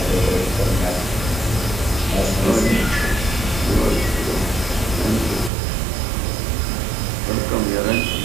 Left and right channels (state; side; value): drops out; left; at 5.5 s